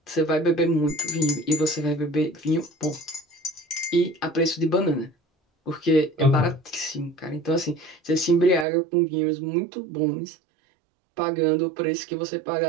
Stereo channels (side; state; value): left; drops out; at 8.7 s